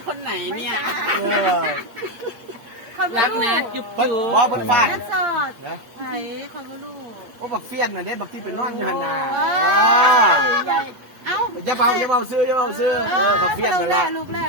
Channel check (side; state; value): left; late; 8.2 ms